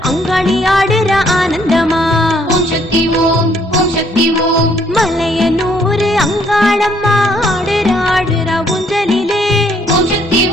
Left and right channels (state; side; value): normal; both; correlation 0.66